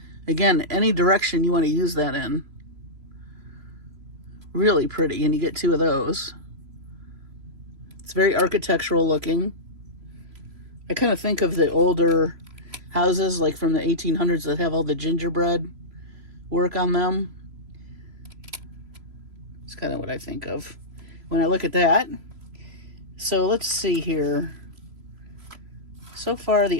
Again, any direction you want to use that in. Really pretty, and you get 2 of those. It's very architectural looking. I kind of think of the older houses, like from the 1800s, that have all the gingerbread work on them. It's kind of what I think of when I look at that. So let's see here. So far,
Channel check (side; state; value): left; late; 3.0 ms